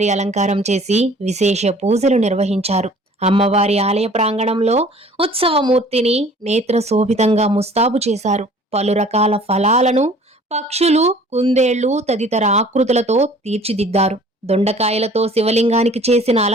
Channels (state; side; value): normal; both; correlation 0.50